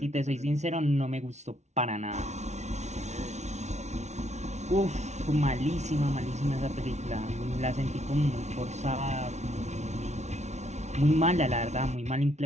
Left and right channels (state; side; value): late; left; 0.32 ms